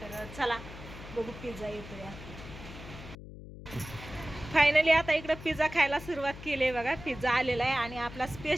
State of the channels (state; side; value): noise; left; hum, 14 dB below the sound